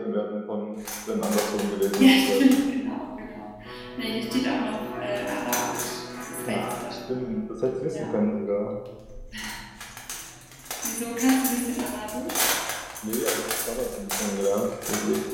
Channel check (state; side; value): identical; both; correlation 1.00